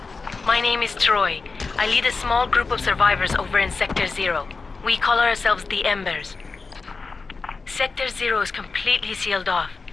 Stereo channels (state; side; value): quieter; right; 4.3 dB